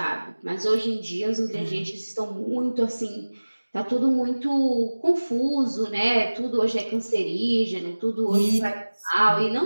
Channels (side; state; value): both; inverted; correlation -1.00